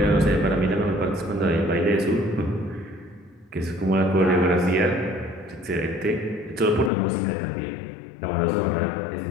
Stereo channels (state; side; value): drops out; right; at 6.9 s